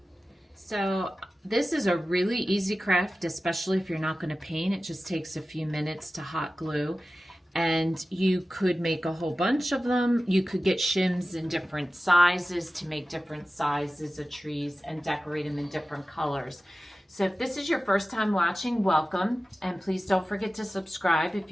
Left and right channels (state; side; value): normal; both; correlation 0.95